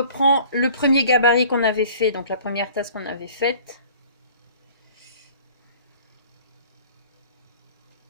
le premier gabarit qu'on avait fait, donc la première tasse qu'on avait faite.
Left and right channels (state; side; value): inverted; both; correlation -0.49